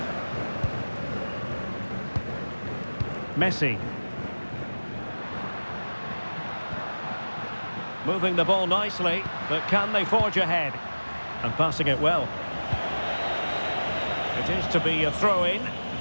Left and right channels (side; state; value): both; inverted; correlation -1.00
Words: Messi. Moving the ball nicely, but can they forge ahead? And passing it well. It is to be a throw-in.